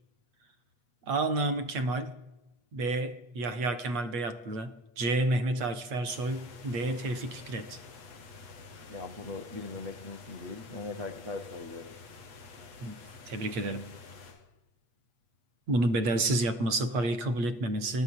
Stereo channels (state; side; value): late; left; 8.3 ms